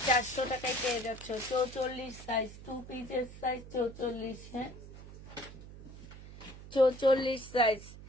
400 টাকায় পেয়ে যাচ্ছ। 44 সাইজ, 2 পিসের সাইজ 44। হ্যাঁ 44 সাইজ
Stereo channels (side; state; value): right; noise; hum, 15 dB below the sound